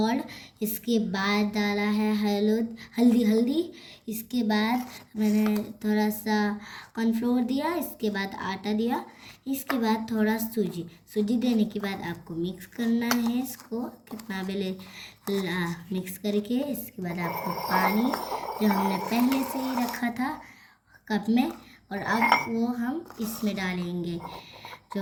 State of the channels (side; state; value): both; identical; correlation 1.00